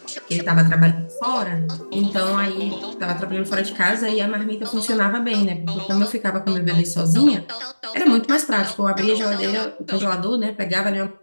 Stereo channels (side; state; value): both; inverted; correlation -1.00